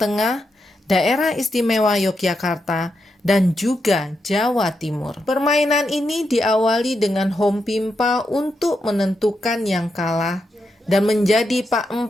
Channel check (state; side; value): normal; both; correlation 0.84